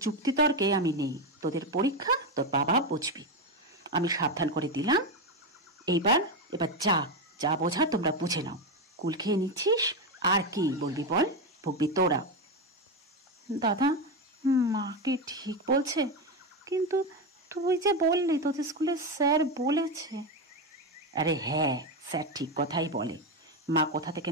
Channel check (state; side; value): normal; both; correlation 0.12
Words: যুক্তিতর্কে আমি নেই। তোদের পরীক্ষা, তোর বাবা বুঝবি। আমি সাবধান করে দিলাম। এবার যা যা বোঝা তোমরা বুঝে নাও। কুল খেয়ে নিচ্ছিস, আর কি বলবি বল? ভুগবি তোরা। দাদা, মা কি ঠিক বলছে? কিন্তু তুই যে বললি তোদের স্কুলে স্যার বলেছে। আরে হ্যাঁ, স্যার ঠিক কথাই বলে। মা কোথা থেকে